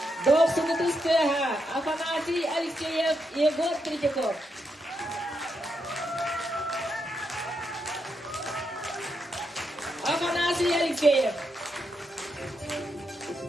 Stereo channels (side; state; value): both; normal; correlation 0.82